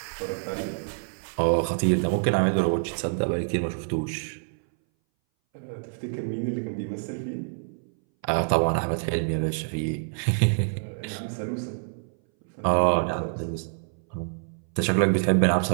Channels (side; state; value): left; silent; 60 dB below the other